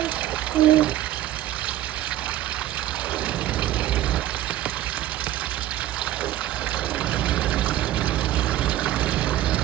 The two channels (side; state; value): left; quieter; 13.5 dB